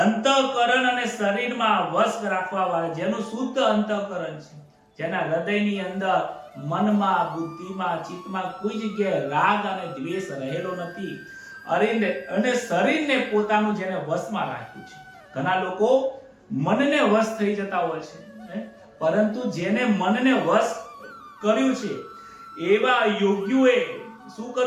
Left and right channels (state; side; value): identical; both; correlation 1.00